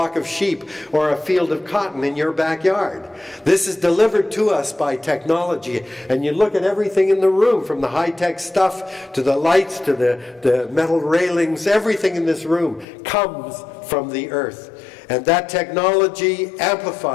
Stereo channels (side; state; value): right; drops out; at 12.9 s